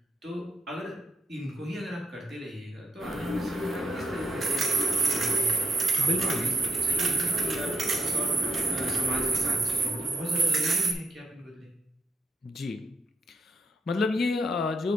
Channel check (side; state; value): both; normal; correlation 0.79